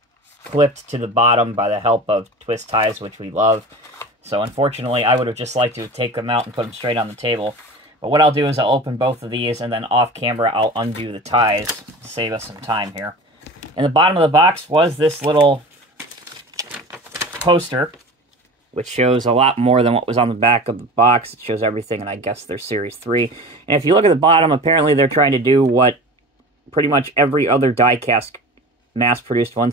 clipped to the bottom by the help of twist ties, which we love. So unfortunately, I would have just liked to take them out and put them straight on the table. But what I'll do is I'll open both of these, and then off camera, I'll undo the ties to save us some time here. In the bottom of the box was this little poster, which shows a lot more than what was on the back of the box. It shows everything, and I guess they're Series 3. And if you look at the bottom, apparently they're trying to do what pretty much every other die-cast mass-produced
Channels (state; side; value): normal; both; correlation 0.35